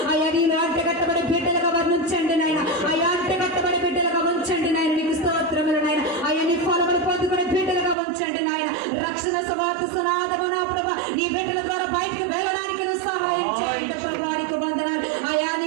అయ్యా నీలో అంటే గట్టబడి బిడ్డలుగా వర్ణించండి నాయన. అయ్యా అంటే గట్టబడి బిడ్డలుగా ఉంచండి నాయన, నీకు స్తోత్రములు నాయన. అయ్యా నీ ఫలములు పొందుకునే బిడ్డలుగా ఉంచండి నాయన. రక్షణ సువార్త సునాదమున ప్రభా నీ బిడ్డల ద్వారా బయటకు వెళ్ళడానికి నువ్వు సహాయం చేయండి ప్రభా, నీకు వందనాలు. అయా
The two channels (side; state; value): left; drops out; at 8.0 s